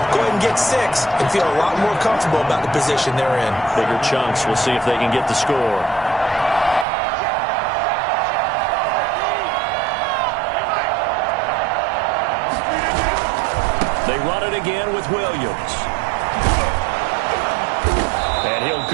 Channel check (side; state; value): left; drops out; at 6.9 s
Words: Go ahead and get 6 and feel a lot more comfortable about the position they're in. Bigger chunks. We'll see if they can get the score. They run it again with Williams. And he'll